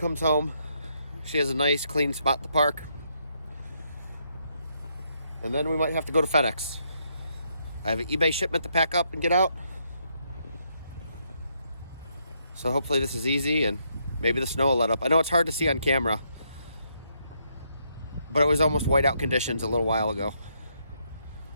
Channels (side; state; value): both; inverted; correlation -0.75